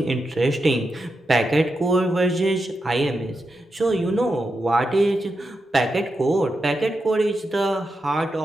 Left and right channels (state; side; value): normal; both; correlation 0.87